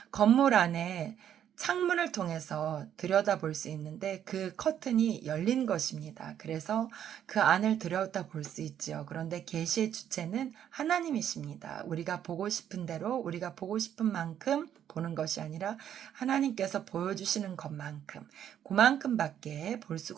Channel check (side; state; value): left; quieter; 10.0 dB